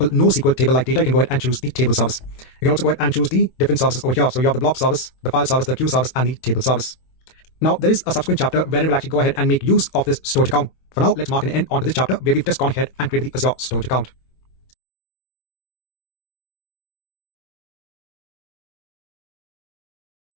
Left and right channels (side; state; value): right; late; 22 ms